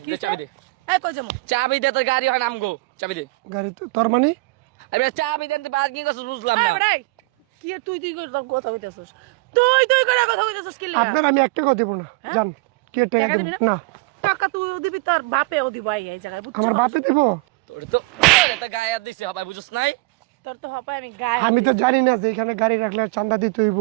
দে চাবি দে, এই কই যামু? চাবি দে, তোর গাড়ি হয় আমগো, চাবি দে। গাড়ি তো তোর মানে? আরে চাবি দেন, তুই পার্কিং করছিস বুঝলাম এই না। বেটা, কি এর তুই তুই করে কথা কইতাছস? তুই করে কথা কইতাছস কি লাগা? আপনার আমি এক টাকা দেবো না, যান। কি এর টাকা টাকা দেবো? দিবি না, টাকা তুইও দিবি, তোর বাপেও দিব এই জায়গায়, বুঝছস? আমার বাপে দেবো? তোর তো তো গায়ে হাত দিছে হবাই, বুঝছ নাই? তোর তো হপায় আমি গায়ে আমি তো জানি না যে এখানে গাড়ি রাখলে চাঁদা দিতে হইব।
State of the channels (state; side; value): quieter; left; 24.9 dB